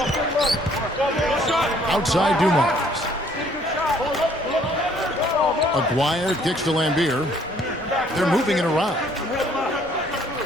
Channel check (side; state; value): both; normal; correlation 0.61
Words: Outside Dumars. Aguirre kicks to Lambier. They're moving it around.